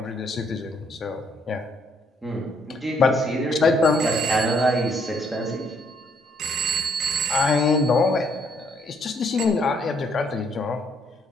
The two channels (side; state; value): both; normal; correlation 0.68